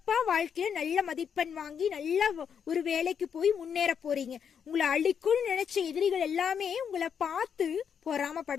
வாழ்க்கையில நல்ல மதிப்பெண் வாங்கி நல்ல ஒரு வேலைக்கு போய் முன்னேற போறீங்க. உங்களை அழிக்கும்னு நினைச்ச எதிரிகள் எல்லாமே உங்களை பார்த்து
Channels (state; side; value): quieter; right; 7.5 dB